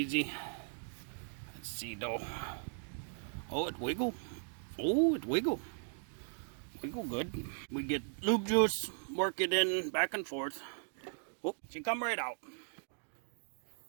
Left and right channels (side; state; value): left; silent; digital silence